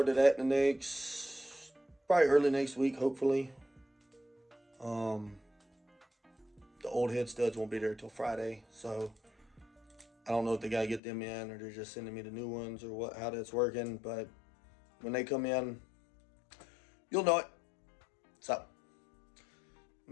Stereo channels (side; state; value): right; drops out; at 11.0 s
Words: to that in the next, probably early next week, hopefully. The old head studs won't be there till Friday, so I don't know if they gotta get them in or they're just sending me the new ones or what, how that's working. But when they come in, you'll know it. So I'm